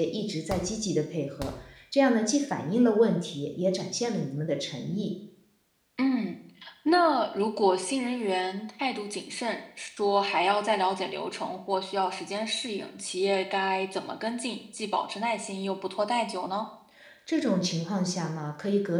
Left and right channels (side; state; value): both; identical; correlation 1.00